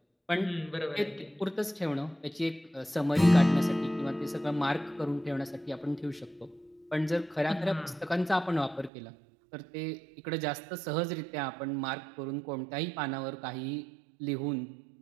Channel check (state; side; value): drops out; left; at 8.9 s